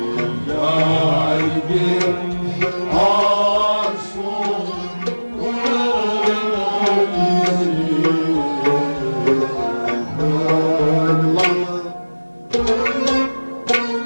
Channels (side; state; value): both; inverted; correlation -1.00